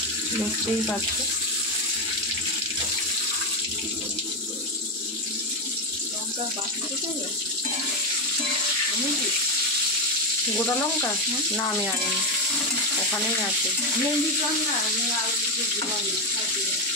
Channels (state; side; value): normal; both; correlation 0.09